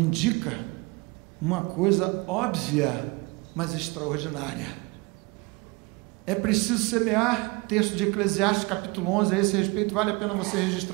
uma coisa óbvia, mas extraordinária. É preciso semear. Texto de Eclesiastes, capítulo 11, a esse respeito, vale a pena você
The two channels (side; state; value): left; quieter; 26.8 dB